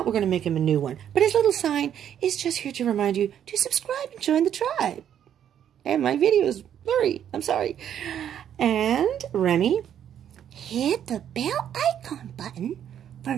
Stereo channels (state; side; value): quieter; left; 9.7 dB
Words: we're going to make him a new one. But his little sign is just here to remind you to subscribe and join the tribe. And my video is blurry. I'm sorry. And Remy, hit the bell icon button for